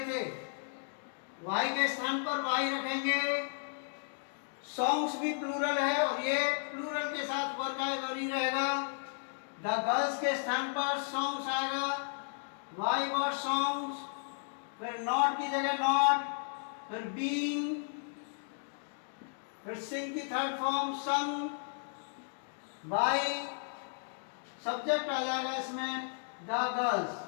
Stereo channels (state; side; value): silent; right; digital silence